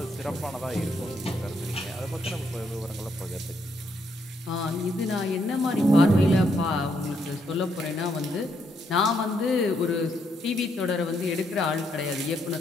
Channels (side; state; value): both; normal; correlation 0.75